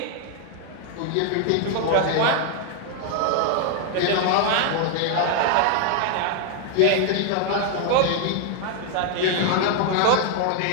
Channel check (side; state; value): both; different; correlation 0.00